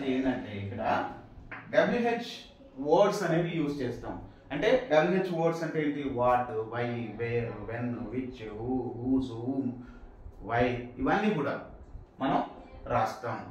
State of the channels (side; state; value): both; identical; correlation 1.00